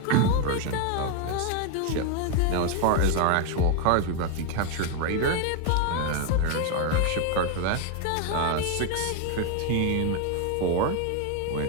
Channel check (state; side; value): different; both; correlation 0.01